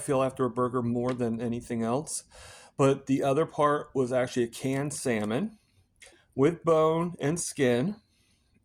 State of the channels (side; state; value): both; identical; correlation 1.00